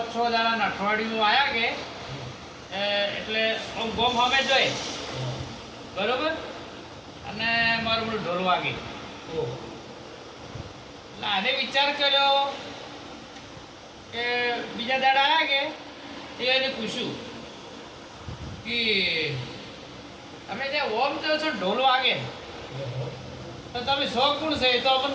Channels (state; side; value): identical; both; correlation 1.00